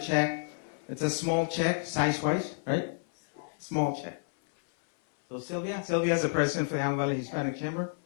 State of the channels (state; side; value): silent; right; 58 dB below the other